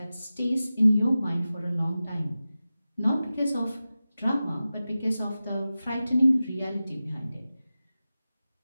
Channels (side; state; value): both; inverted; correlation -0.95